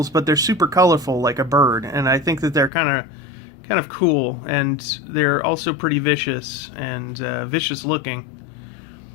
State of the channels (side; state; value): right; drops out; at 2.7 s